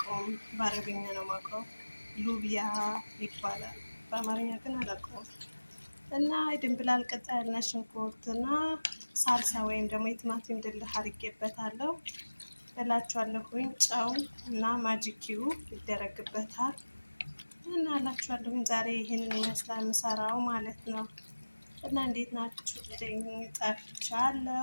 በአረብኛ ነው የማውቀው። ሉቢያ ይባላል፣ በአማርኛ ግን አላውቀውም። እና የድንብላል ቅጠል፣ ነጭ ሽንኩርት እና ሳልሳ ወይም ደግሞ የቲማቲም ድልህ አድርጌበታለሁ እላችኋለሁኝ። ጨው እና ማጂኪው ይደረግበታል እና እላችኋለሁኝ። ዛሬ ይህንን ይመስላል የምሰራው ማለት ነው። እና እንዴት ናችሁ?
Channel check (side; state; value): both; inverted; correlation -1.00